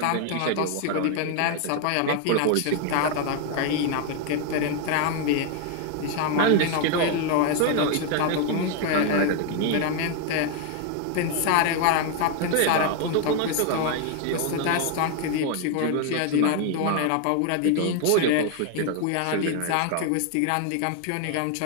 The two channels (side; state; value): both; different; correlation 0.01